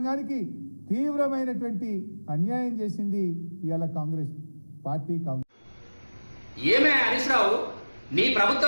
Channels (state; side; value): inverted; both; correlation -1.00